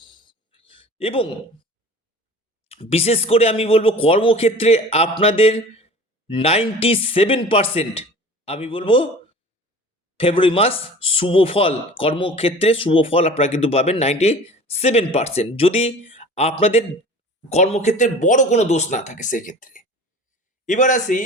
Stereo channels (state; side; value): normal; both; correlation 0.41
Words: এবং বিশেষ করে আমি বলবো কর্মক্ষেত্রে আপনাদের 97% আমি বলবো ফেব্রুয়ারি মাস শুভ ফল, কর্মক্ষেত্রে শুভ ফল আপনারা কিন্তু পাবেন 97%, যদি আপনাদের কর্মক্ষেত্রে বড় কোনো দোষ না থাকে সেক্ষেত্রে। এবার আসি